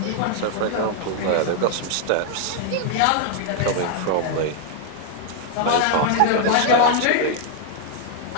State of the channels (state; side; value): different; both; correlation 0.00